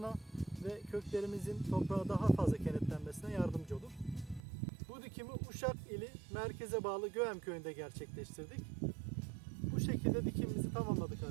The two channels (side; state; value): left; drops out; at 4.4 s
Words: ve köklerimizin toprağa daha fazla kenetlenmesine yardımcı olur. Bu dikimi Uşak ili merkeze bağlı Göğem köyünde gerçekleştirdik. Bu şekilde dikimimizi tamamladık